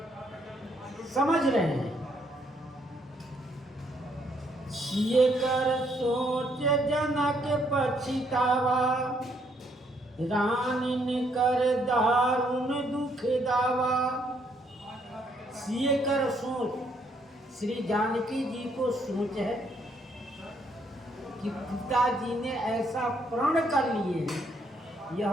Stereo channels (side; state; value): both; normal; correlation 0.71